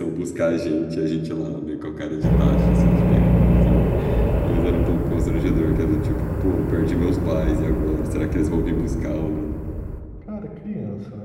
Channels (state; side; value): identical; both; correlation 1.00